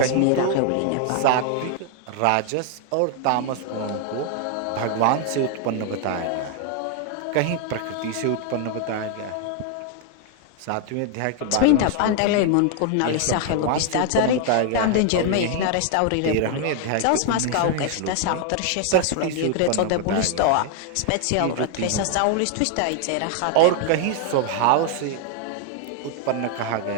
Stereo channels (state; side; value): different; both; correlation 0.00